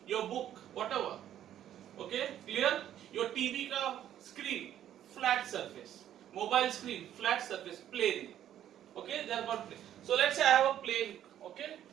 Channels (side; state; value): left; quieter; 11.1 dB